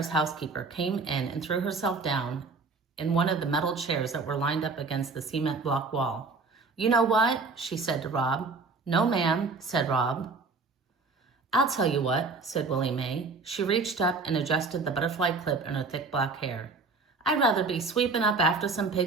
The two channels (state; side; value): quieter; left; 4.2 dB